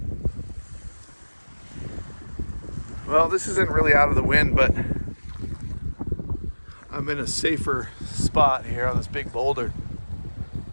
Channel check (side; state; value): both; inverted; correlation -1.00